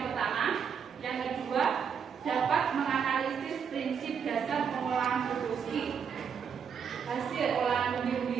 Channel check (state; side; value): quieter; left; 7.0 dB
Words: pertama. Yang kedua, dapat menganalisis prinsip dasar pengolahan produksi hasil olahan